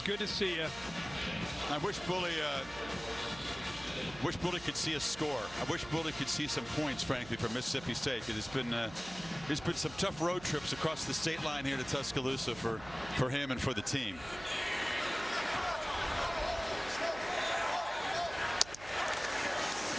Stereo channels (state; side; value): noise; right; hum, 17 dB below the sound